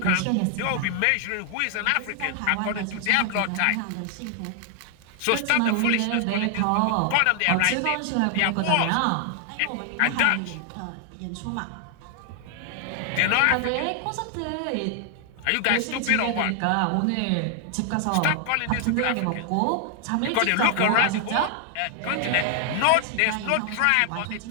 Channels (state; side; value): different; both; correlation 0.00